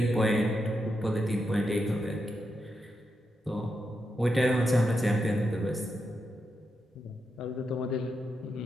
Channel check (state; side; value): normal; both; correlation 0.85